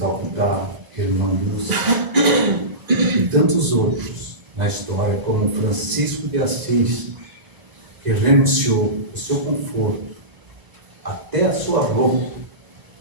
Irmã Lúcia, e tantos outros na história, como Francisco de Assis, que renunciou o seu conforto, até a sua roupa,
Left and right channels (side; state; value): left; late; 1.0 ms